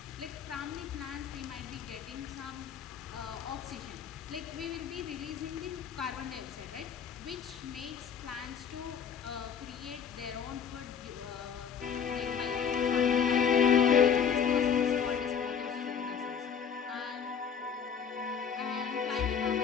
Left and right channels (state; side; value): quieter; right; 7.4 dB